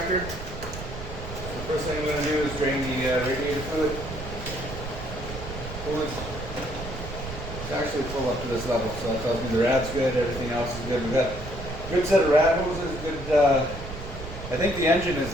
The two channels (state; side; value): noise; right; rumble, 9 dB below the sound